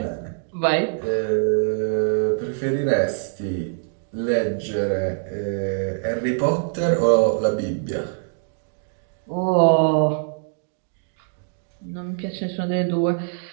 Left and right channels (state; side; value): silent; left; digital silence